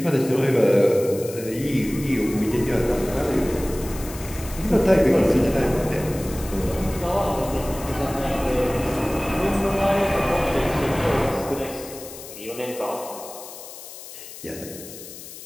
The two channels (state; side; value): noise; left; hiss, 14 dB below the sound